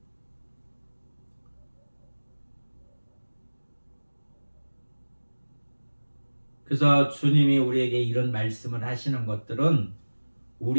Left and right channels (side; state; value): both; inverted; correlation -1.00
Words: 그래서 주님이 우리에게 이런 말씀을 하시는 것들은